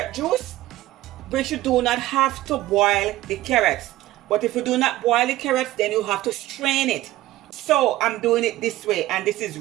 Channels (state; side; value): quieter; left; 16.0 dB